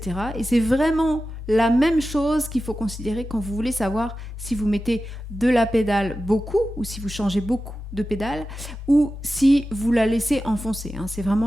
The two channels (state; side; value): normal; both; correlation 0.93